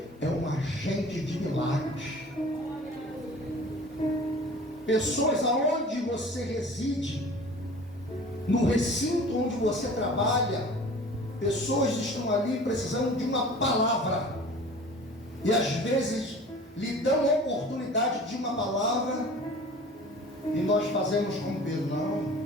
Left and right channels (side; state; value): both; normal; correlation 0.43